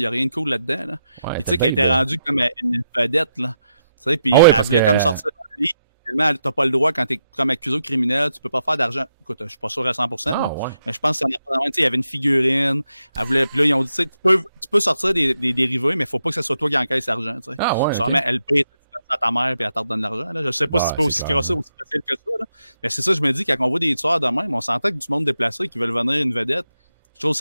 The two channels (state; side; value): inverted; both; correlation -0.83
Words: a rien de cool là-dedans, là. Ouais, puis tu sais, qu'elle était rendue comme une vedette, là. Tu sais, puis elle voulait comme sortir de la vie. Finalement, t'as pas le droit quand t'es comme accusé au criminel, tu peux pas faire d'argent. Écoute, je suis pas sûr à 100%. Mais je pense que ça il y avait une figurine. Elle voulait, puis là, ils ont dit, tu sais, tu peux sortir des dérivés, mais faut pas que ce soit toi qui encaisse l'argent, tu sais. Ah ouais. Sûrement, elle paye à ta mère puis elle te redonne l'argent, là. Je sais pas si c'est pas aussi crossé, aussi facile que ça, là. Mais c'est ça, je me dis, quand on voit des tueurs de même, on s'entend que du monde déplacé qui veulent venir une vedette. Je trouve